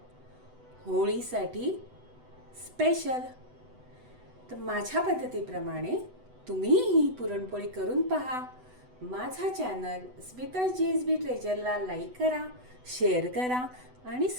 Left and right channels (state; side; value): late; left; 8.0 ms